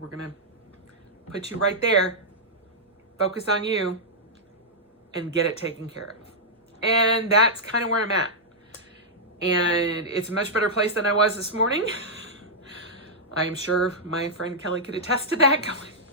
We're going to put you right there. focus on you and get it taken care of. And that's kind of where I'm at. And it's a much better place than I was this morning. I'm sure my friend Kelly could attest to that. Going,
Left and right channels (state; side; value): normal; both; correlation -0.08